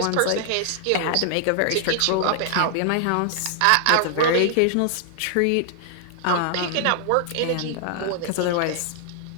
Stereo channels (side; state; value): both; different; correlation 0.00